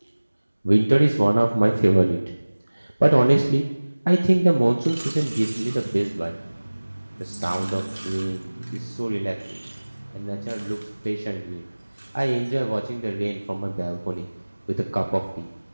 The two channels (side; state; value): both; inverted; correlation -1.00